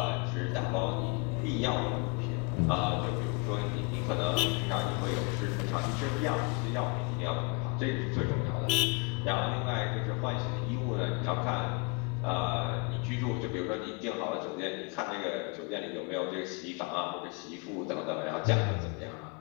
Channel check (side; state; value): right; quieter; 29.2 dB